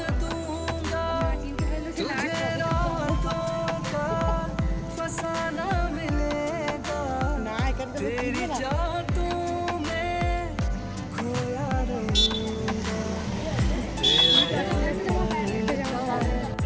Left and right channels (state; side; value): identical; both; correlation 1.00